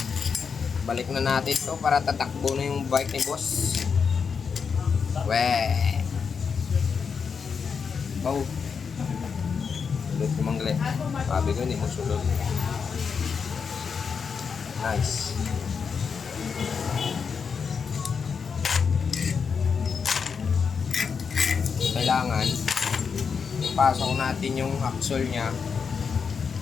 Balik na natin to para tatakbo na yung bike ni boss. Weh. Wow. Sulod ko mangle. Sabi ko hindi mo sulod. Nice. Kailangan ipasok natin yung axle nya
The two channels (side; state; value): right; quieter; 6.0 dB